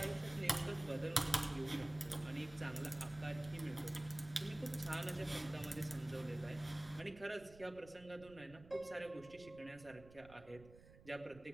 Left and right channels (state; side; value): noise; right; rumble, 19 dB below the sound